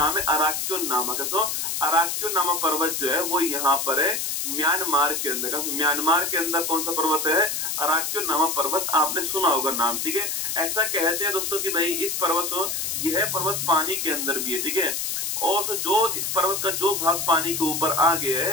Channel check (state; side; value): noise; left; hiss, 1 dB below the sound